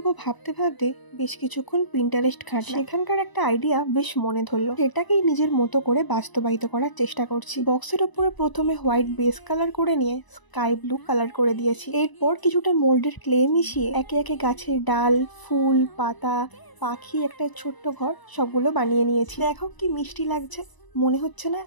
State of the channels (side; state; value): right; late; 1.0 ms